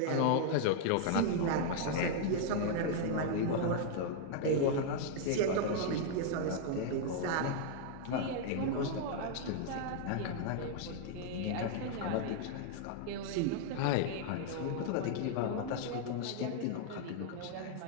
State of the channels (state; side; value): different; both; correlation 0.00